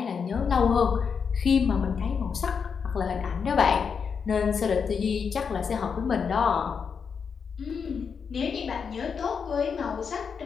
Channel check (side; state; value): right; quieter; 6.2 dB